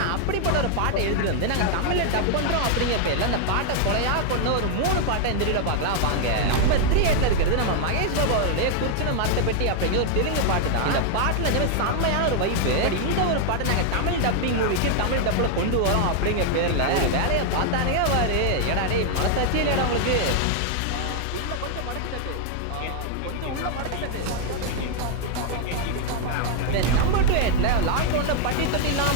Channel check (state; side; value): different; both; correlation 0.00